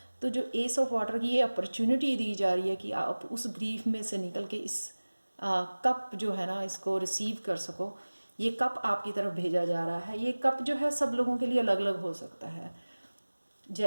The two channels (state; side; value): inverted; both; correlation -1.00